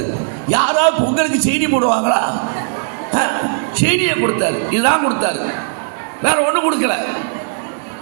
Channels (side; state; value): left; silent; 63 dB below the other